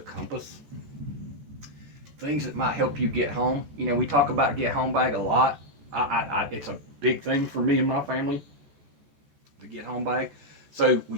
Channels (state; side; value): late; left; 14 ms